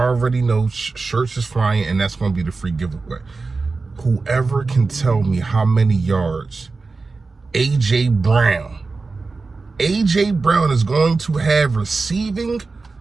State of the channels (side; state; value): left; quieter; 4.0 dB